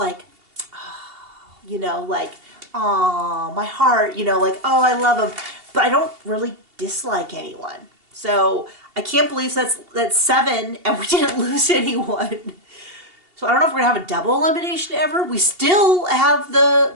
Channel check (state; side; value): late; left; 2.8 ms